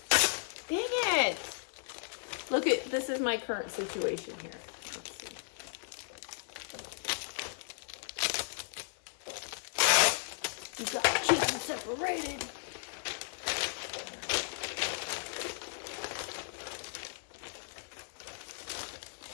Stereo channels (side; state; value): right; silent; digital silence